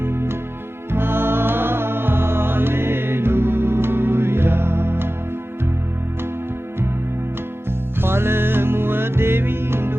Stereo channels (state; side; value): normal; both; correlation 0.96